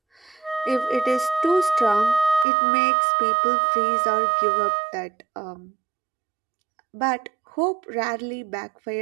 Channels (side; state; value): left; drops out; at 2.5 s